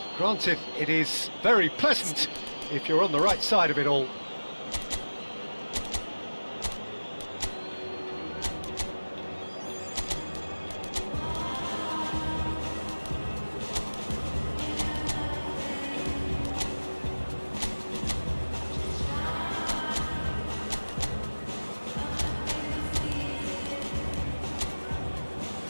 Granted, it is very pleasant if you're on the right side of it all.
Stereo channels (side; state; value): both; inverted; correlation -1.00